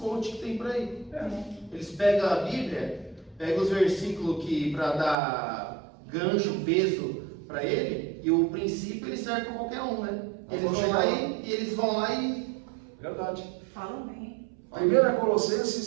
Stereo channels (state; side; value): drops out; left; at 5.2 s